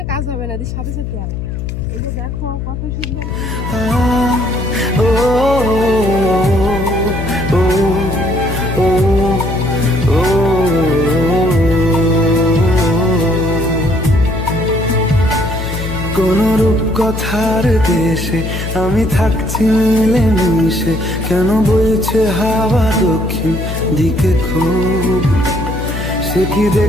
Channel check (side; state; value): left; noise; hum, 5 dB below the sound